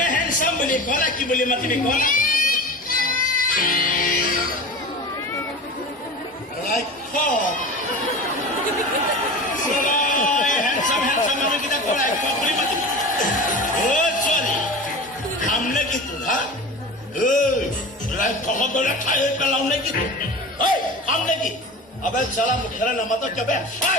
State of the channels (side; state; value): both; normal; correlation 0.32